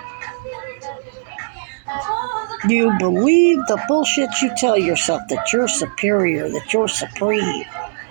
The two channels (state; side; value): silent; left; digital silence